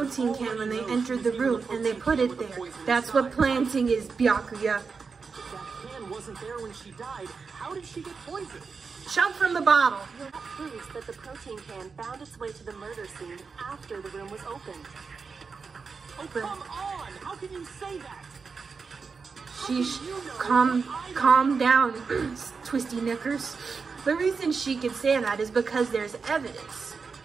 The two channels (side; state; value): left; quieter; 5.1 dB